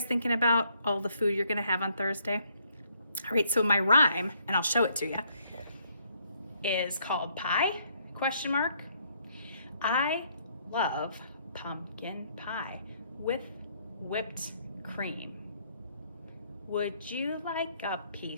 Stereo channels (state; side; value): inverted; both; correlation -0.69